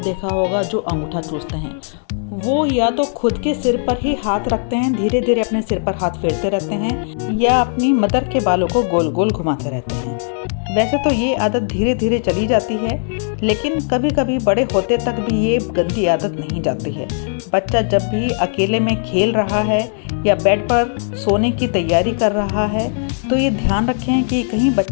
होगा जो अंगूठा चूसते हैं। वो या तो खुद के सिर पर ही हाथ रखते हैं, धीरे धीरे अपने सिर पर हाथ फेरते रहते हैं, या अपनी मदर के बालों को गोल गोल घुमाते रहते हैं। वैसे तो ये आदत धीरे धीरे चली जाती है, लेकिन कभी कभी बड़े होते तक भी ये गंदी आदत नहीं जाती है। बच्चा जब भी अकेले में खेल रहा है या बेड पर सोने की तैयारी कर रहा है तो ये ध्यान रखें कि कहीं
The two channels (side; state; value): right; silent; digital silence